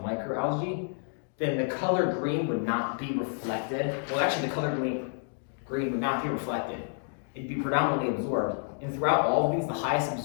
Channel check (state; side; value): silent; right; digital silence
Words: microalgae, then the color green would not be reflected. Well, actually, the color green would not be reflected. It'd be predominantly absorbed, And throughout all of these, the highest